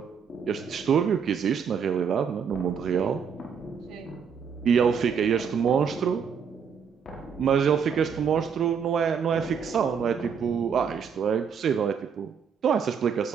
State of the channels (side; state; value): left; quieter; 6.8 dB